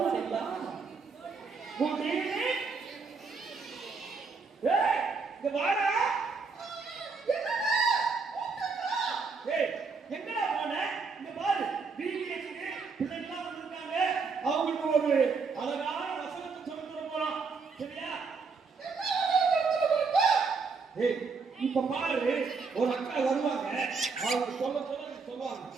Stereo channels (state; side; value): quieter; left; 4.7 dB